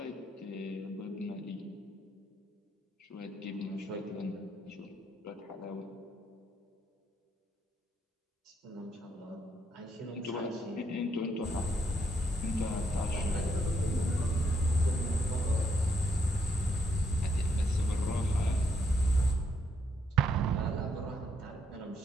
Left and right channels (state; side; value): normal; both; correlation 0.76